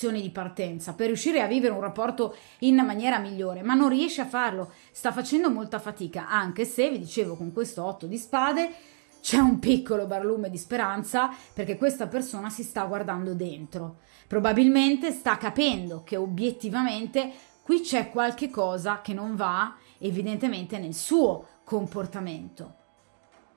di partenza per riuscire a vivere un rapporto in maniera migliore, ma non riesce a farlo, sta facendo molta fatica, anche se, vi dicevo, con questo otto di spade c'è un piccolo barlume di speranza, perché questa persona si sta guardando dentro, probabilmente sta capendo che obiettivamente qui c'è qualche cosa che non va evidentemente nel suo comportamento.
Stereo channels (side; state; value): left; silent; 59 dB below the other